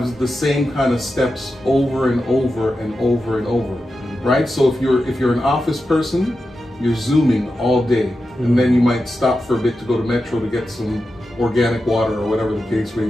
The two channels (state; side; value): normal; both; correlation 0.90